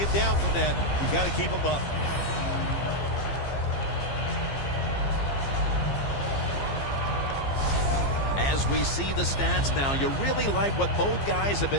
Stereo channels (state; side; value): late; right; 15 ms